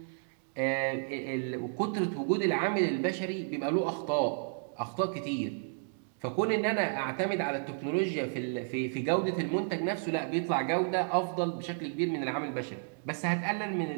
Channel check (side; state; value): left; silent; digital silence